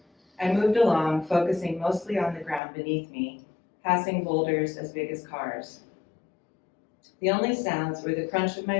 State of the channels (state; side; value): drops out; right; at 2.6 s